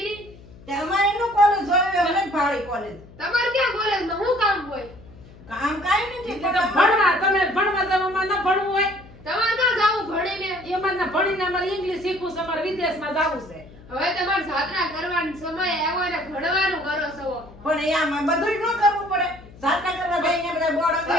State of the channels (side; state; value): left; noise; hum, 21 dB below the sound